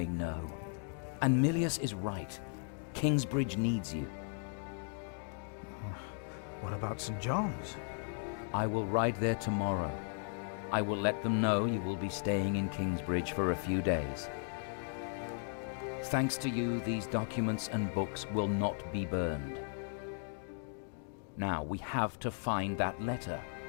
no. And Milius is right. Kingsbridge needs you. What about St. John's? I will ride there tomorrow. I will let them know you will be staying in Kingsbridge for a few days. Thanks to you, these documents and books will not be burned. Now, we have to find that letter.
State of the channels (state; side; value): silent; right; 54 dB below the other